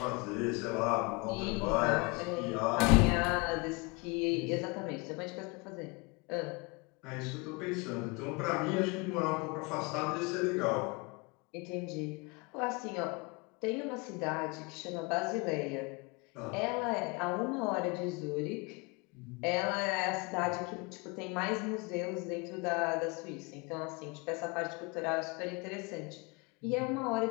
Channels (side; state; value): right; quieter; 28.4 dB